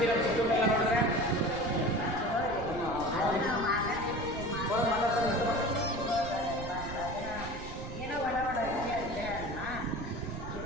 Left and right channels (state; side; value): noise; right; rumble, 9 dB below the sound